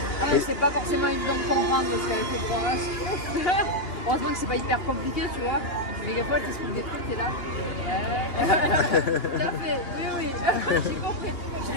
Après, c'est pas forcément évident de comprendre parce qu'avec le programme, heureusement que c'est pas hyper compliqué, tu vois. Mais des fois, tu expliques des trucs, t'es là. Ouais. Tout à fait, oui. J'ai compris. Je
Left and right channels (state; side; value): late; right; 2.8 ms